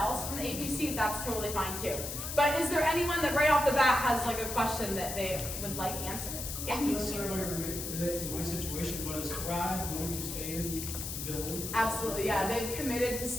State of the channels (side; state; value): left; noise; hiss, 6 dB below the sound